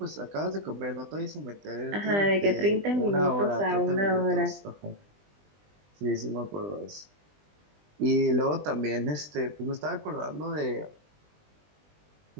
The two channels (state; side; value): late; left; 20 ms